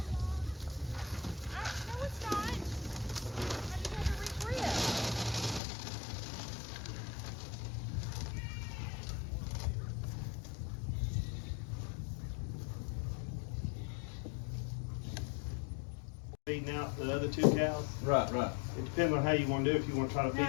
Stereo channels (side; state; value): right; drops out; at 5.6 s